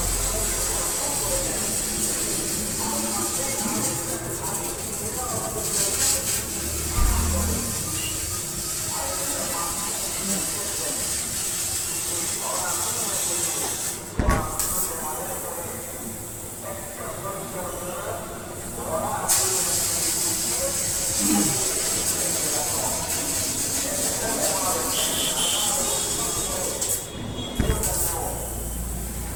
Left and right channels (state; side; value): identical; both; correlation 1.00